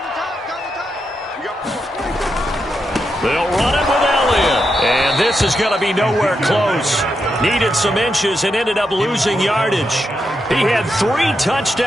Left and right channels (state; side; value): normal; both; correlation 0.84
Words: They'll run it with Elliott. And this is going to be nowhere close. Needed some inches and ended up losing yardage. He had 3